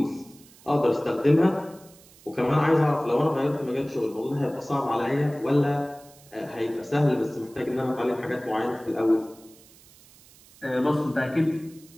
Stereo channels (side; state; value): right; noise; hiss, 25 dB below the sound